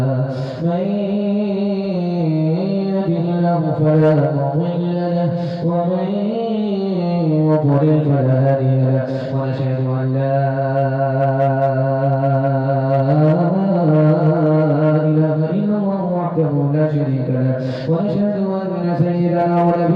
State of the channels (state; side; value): identical; both; correlation 1.00